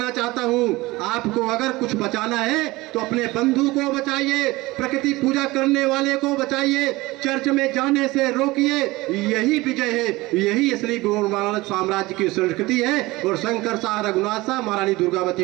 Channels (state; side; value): quieter; left; 20.5 dB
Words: चाहता हूँ, आपको अगर कुछ बचाना है तो अपने बंधु को बचाइए, प्रकृति पूजा करने वाले को बचाइए, चर्च में जाने से रोकिए। यही विजय है, यही असली गौरव साम्राज्य की संस्कृति है। और शंकर शाह, रघुनाथ शाह, महारानी